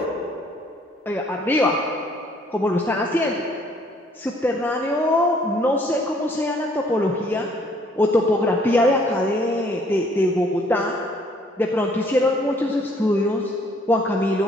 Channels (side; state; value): both; normal; correlation 0.62